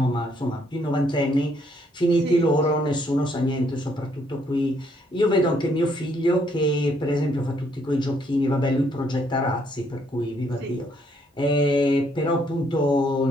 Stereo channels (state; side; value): normal; both; correlation 0.69